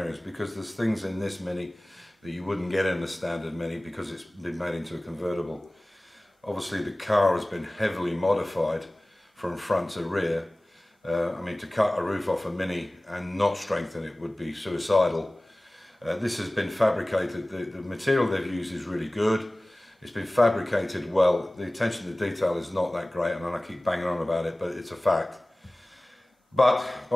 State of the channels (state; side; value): normal; both; correlation 0.98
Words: because there's things in this Mini that you wouldn't get in the standard Mini because it's been made into a convertible. Obviously the car has been heavily modified from front to rear. I mean, to cut a roof off a Mini and not strengthen it would be suicidal. This has been fabricated. The material they've used is really good. It's been fabricated well. The attention to detail is not that great, and I keep banging on about it, but it's a fact. But